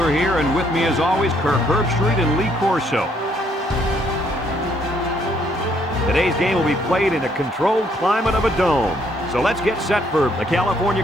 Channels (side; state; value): both; normal; correlation 0.69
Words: here, and with me, as always, Kirk Herbstreit and Lee Corso. Today's game will be played in a controlled climate of a dome. So let's get set for the California